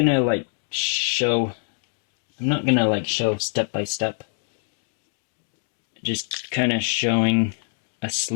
show step by step. Just kind of showing a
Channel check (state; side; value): silent; right; digital silence